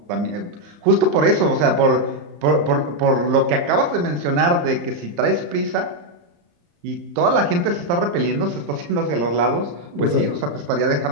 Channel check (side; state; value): left; late; 34 ms